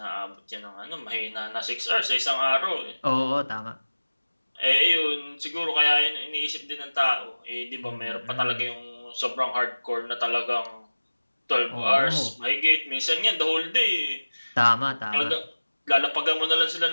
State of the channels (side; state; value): both; inverted; correlation -1.00